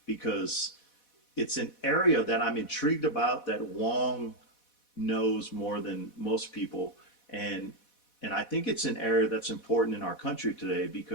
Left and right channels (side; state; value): right; late; 4.1 ms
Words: because it's an area that I'm intrigued about that Wong knows more than most people, and I think it's an area that's important in our country today